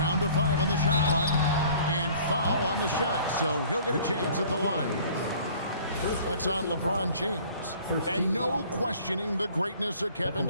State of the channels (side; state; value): both; inverted; correlation -0.51